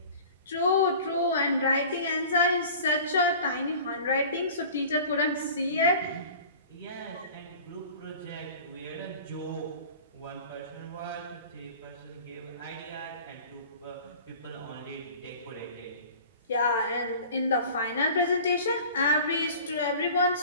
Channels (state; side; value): inverted; both; correlation -0.42